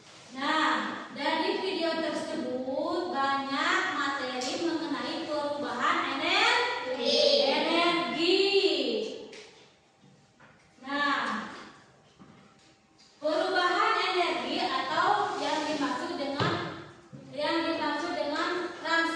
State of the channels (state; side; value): identical; both; correlation 1.00